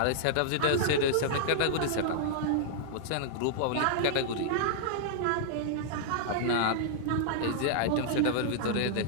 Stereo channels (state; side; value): different; both; correlation -0.01